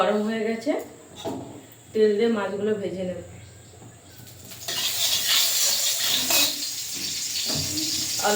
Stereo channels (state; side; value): identical; both; correlation 1.00